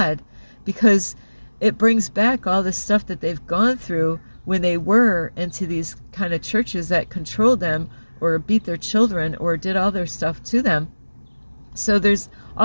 because it brings back all the stuff that they've gone through when they were into these kind of churches that controlled them or beat their children or did all their stuff to them. So there's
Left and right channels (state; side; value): inverted; both; correlation -1.00